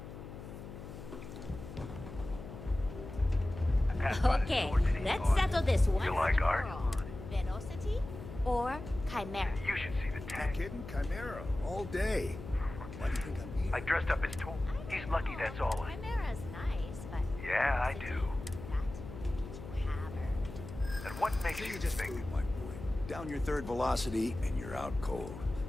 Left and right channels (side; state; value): left; noise; hum, 12 dB below the sound